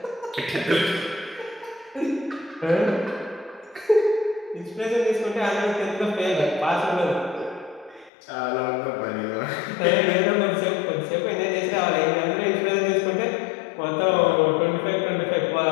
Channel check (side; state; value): right; drops out; at 8.1 s